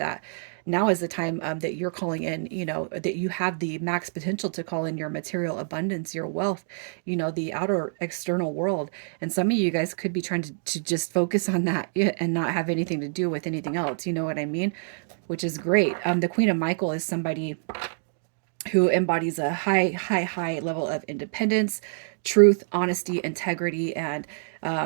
Now is the time that you're calling in, that you have the max potential to call in your material abundance, your wealth, the outer external world. And some of you guys could be trying to just focus on that, yeah, and not have anything to do with anything else. You know what I mean? Which is great. The Queen of Michael is somebody who embodies a high level of independence, truth, honesty, integrity, and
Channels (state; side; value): silent; left; digital silence